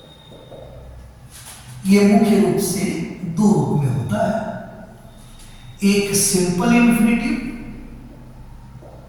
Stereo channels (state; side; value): identical; both; correlation 1.00